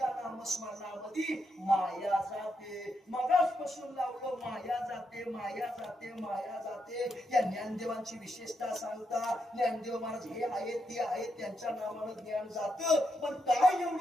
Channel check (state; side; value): normal; both; correlation 0.82